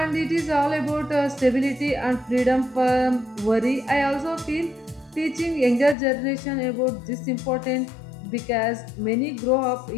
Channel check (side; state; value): right; drops out; at 6.0 s